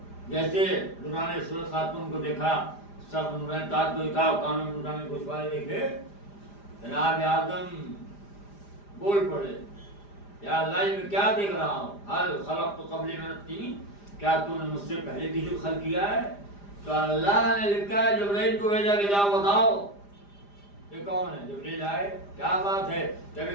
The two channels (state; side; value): late; right; 5.0 ms